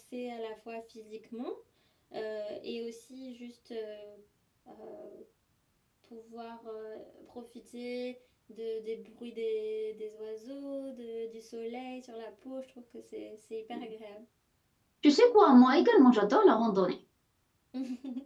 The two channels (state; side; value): identical; both; correlation 1.00